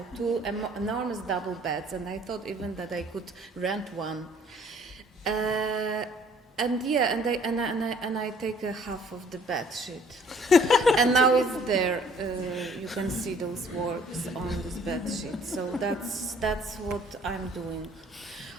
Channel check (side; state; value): both; normal; correlation 0.58